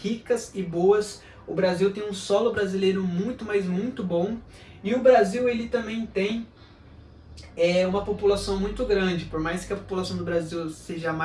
e boas. O Brasil tem um solo brasileiro muito, mas muito bom. E o Brasil ele também tem uma população muito grande. Por mais que a população do Brasil seja a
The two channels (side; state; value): both; identical; correlation 1.00